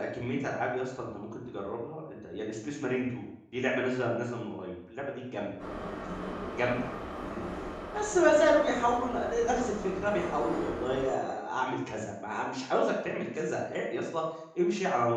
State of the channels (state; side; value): identical; both; correlation 1.00